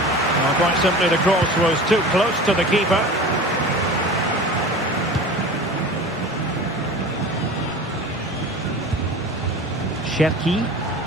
quite simply, the cross was too close to the keeper. Cherki.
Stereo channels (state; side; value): normal; both; correlation 0.36